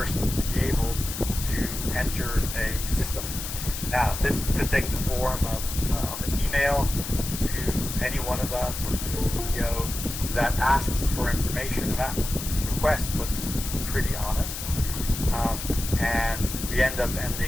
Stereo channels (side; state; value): left; noise; hiss, 7 dB below the sound